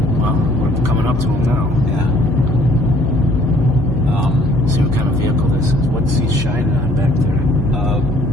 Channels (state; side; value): noise; left; hum, 6 dB below the sound